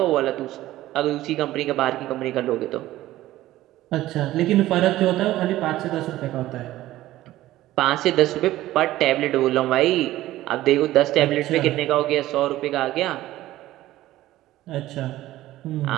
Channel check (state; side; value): quieter; left; 15.4 dB